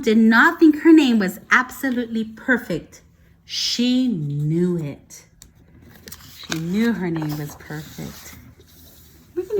did not think her name was absolutely perfect. She knew it. She knew her name was perfect. We're going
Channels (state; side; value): identical; both; correlation 1.00